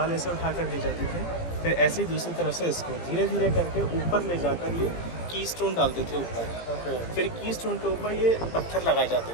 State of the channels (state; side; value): late; right; 17 ms